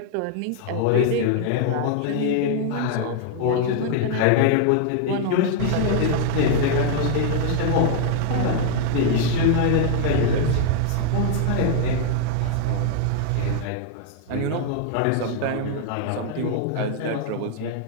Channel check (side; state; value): both; different; correlation 0.00